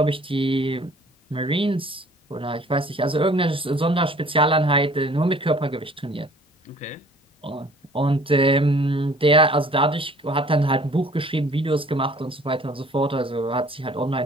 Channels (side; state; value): both; normal; correlation 0.53